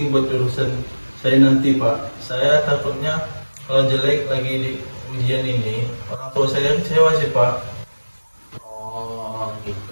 buat jurusan saya nanti Pak. Saya takutnya kalau jelek lagi di ujian ini, orang tua saya kecewa sih Pak. Oh,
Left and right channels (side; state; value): both; inverted; correlation -1.00